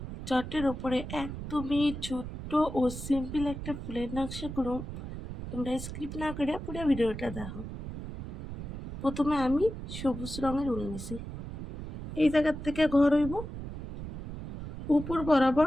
চটের ওপরে একদমই ছোট্ট ও সিম্পল একটা ফুলের নকশা করুন। তোমরা স্কিপ না করে পুরো ভিডিওটা দেখো। প্রথমে আমি সবুজ রঙের উল নিছি। এই জায়গার থেকে ঘর হইব, উপর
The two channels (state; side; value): noise; right; rumble, 9 dB below the sound